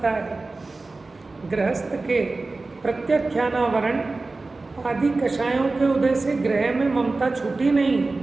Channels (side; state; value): left; quieter; 3.5 dB